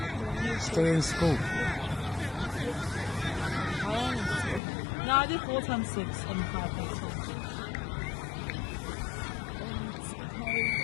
Still in school. How long is it? No, I did 4 times 6 and 5 times 6.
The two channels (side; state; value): right; drops out; at 4.6 s